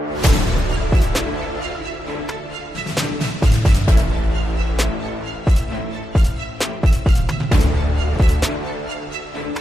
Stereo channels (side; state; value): both; normal; correlation 0.87